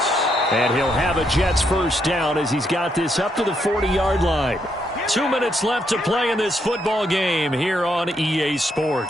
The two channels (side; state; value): both; normal; correlation 0.77